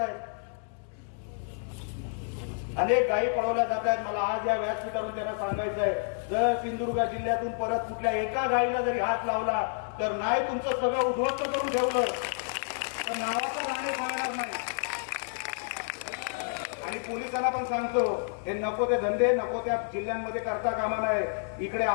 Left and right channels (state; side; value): silent; right; digital silence